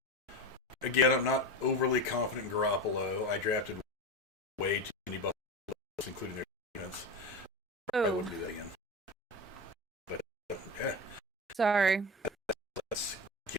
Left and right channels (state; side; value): normal; both; correlation 0.23